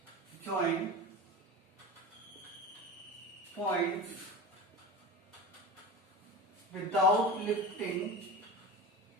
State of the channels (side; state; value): both; normal; correlation 0.29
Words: join points without lifting